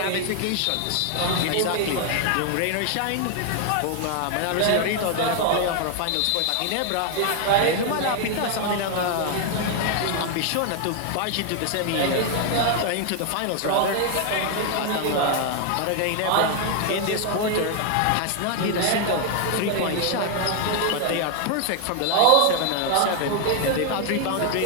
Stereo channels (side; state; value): both; different; correlation 0.00